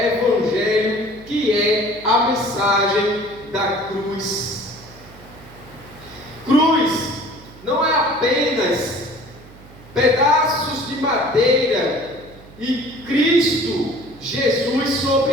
que é a mensagem da cruz. Cruz não é apenas pedaços de madeira e Cristo Jesus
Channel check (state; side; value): noise; right; hum, 21 dB below the sound